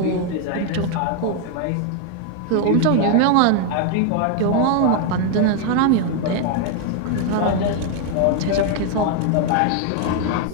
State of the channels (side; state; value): both; different; correlation 0.00